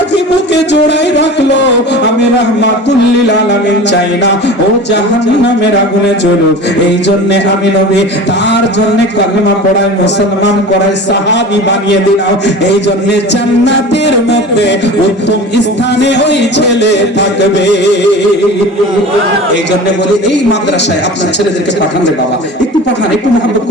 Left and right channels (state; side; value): normal; both; correlation 0.36